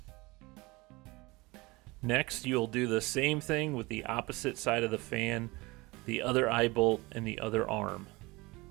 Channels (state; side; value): quieter; left; 23.4 dB